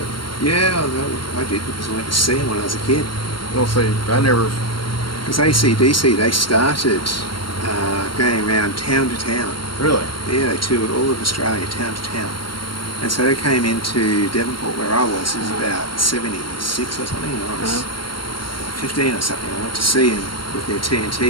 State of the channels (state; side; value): late; right; 0.72 ms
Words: Yeah, I did, because I went to see them when I was a kid. We'll see. I never. Because AC/DC, they started going around town to town. Really? Yeah, they toured all of Australia, town to town. And so they came into Devonport, where I was. It was about 76 or something. I was 15 or something. I went to see them with their